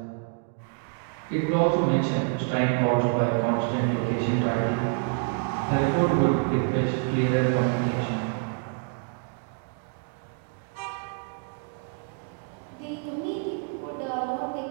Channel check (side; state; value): left; quieter; 37.7 dB